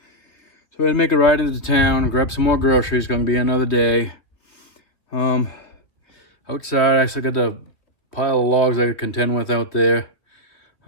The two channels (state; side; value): late; right; 3.0 ms